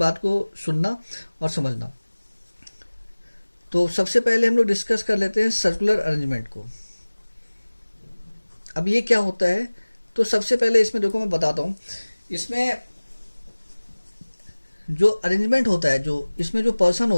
को सुनना और समझना। तो सबसे पहले हम लोग डिस्कस कर लेते हैं सर्कुलर अरेंजमेंट को। अब ये क्या होता है, तो सबसे पहले इसमें देखो मैं बताता हूं, इसमें जो अरेंजमेंट होता है, जो इसमें जो पर्सन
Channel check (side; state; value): both; inverted; correlation -1.00